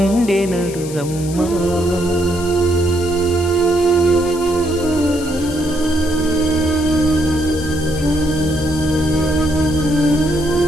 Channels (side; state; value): left; noise; hiss, 14 dB below the sound